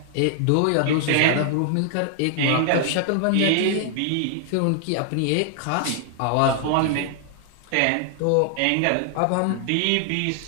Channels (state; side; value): different; both; correlation 0.00